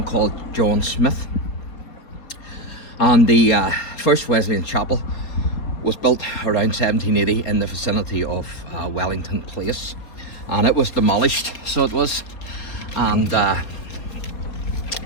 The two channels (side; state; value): right; late; 4.2 ms